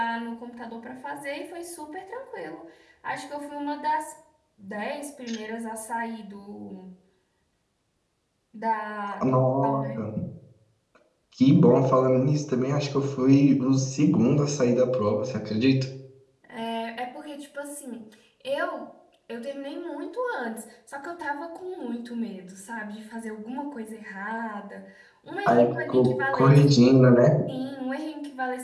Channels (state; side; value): identical; both; correlation 1.00